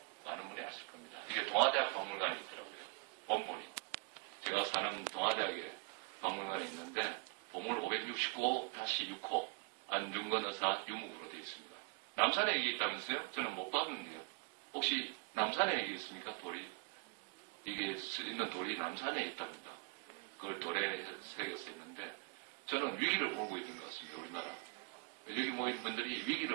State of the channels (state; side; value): quieter; left; 29.5 dB